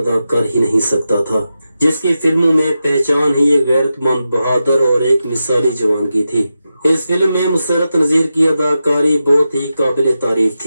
कर ही नहीं सकता था, जिसकी फिल्मों में पहचान ही एक गैरतमंद, बहादुर और एक मिसाली जवान की थी। इस फिल्म में मुसरत नजीर की अदाकारी बहुत ही काबिल तारीफ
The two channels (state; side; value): inverted; both; correlation -0.90